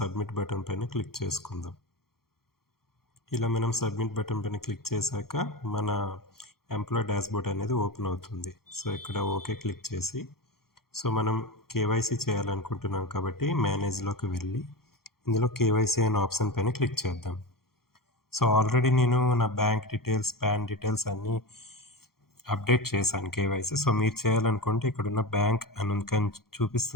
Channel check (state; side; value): late; right; 0.94 ms